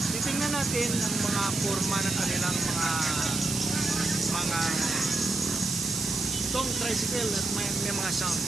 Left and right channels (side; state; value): right; noise; hiss, 3 dB below the sound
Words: titingnan natin ang mga forma ng kanilang mga itong tricycle at may mga sound.